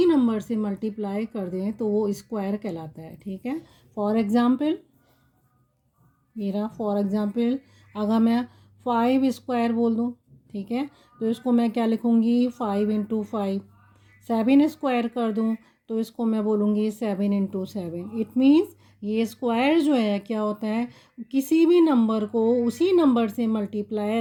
नंबर से मल्टीप्लाई कर दें तो वो स्क्वायर कहलाता है। ठीक है, फॉर एग्ज़ाम्पल अगर मैं 5 स्क्वायर बोल दूँ, ठीक है, तो इसको मैं क्या लिखूँगी 5 इंटू 5। 7 स्क्वायर कर दूँ तो इसको मैं बोलूँगी 7 इंटू 7। इट मीन्स ये स्क्वायर जो है क्या होता है, किसी भी नंबर को उसी नंबर से मल्टीप्लाई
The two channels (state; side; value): identical; both; correlation 1.00